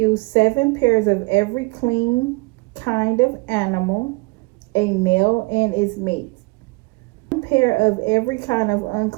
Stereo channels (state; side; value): quieter; left; 27.3 dB